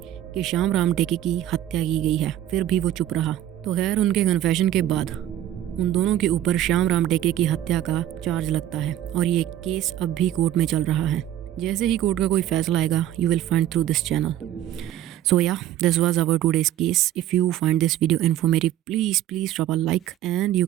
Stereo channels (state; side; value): quieter; left; 12.4 dB